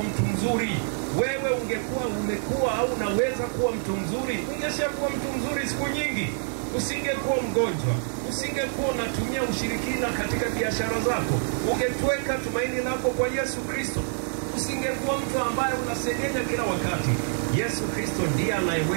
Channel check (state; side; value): silent; left; 61 dB below the other